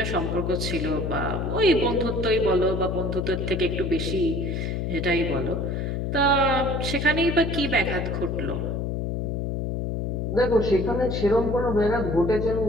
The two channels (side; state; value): left; noise; hum, 2 dB below the sound